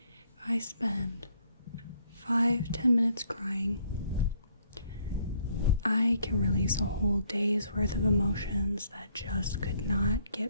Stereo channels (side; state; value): both; inverted; correlation -0.68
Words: if I spend 5-10 minutes crying, I can release a whole day's worth of emotions that just could not